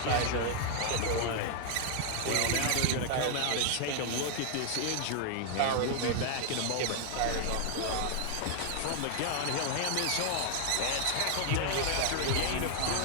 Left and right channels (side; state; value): both; different; correlation 0.00